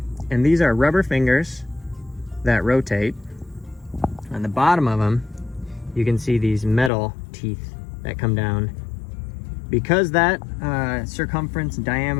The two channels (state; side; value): drops out; right; at 6.9 s